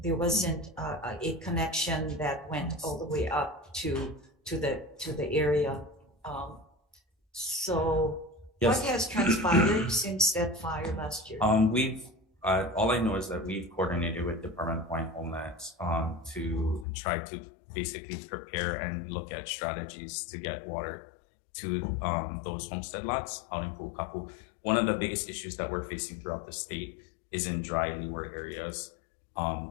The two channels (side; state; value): right; drops out; at 16.9 s